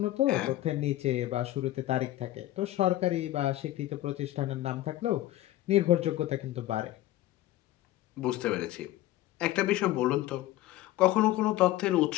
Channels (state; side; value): quieter; right; 15.3 dB